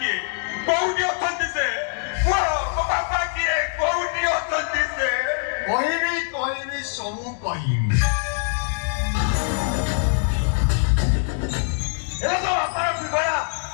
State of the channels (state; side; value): silent; right; 63 dB below the other